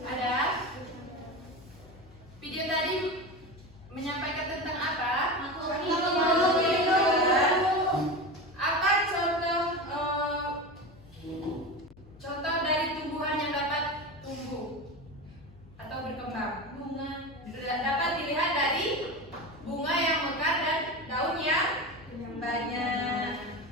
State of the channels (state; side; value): noise; left; hum, 23 dB below the sound